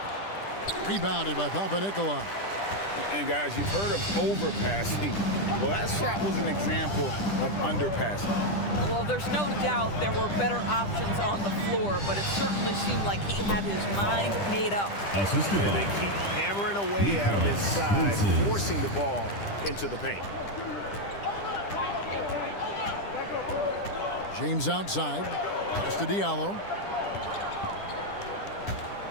Rebounded by Papanikolaou. And guys, you've heard of overpassing. Well, that shot was an example of underpassing. Well, there's no doubt there were better options on the floor, but it certainly seemed like he had his mind made up. Assisted And by they keep hammering away at him inside, forcing the ball into the paint. James outside. Pass to Diallo.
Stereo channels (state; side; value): late; right; 10 ms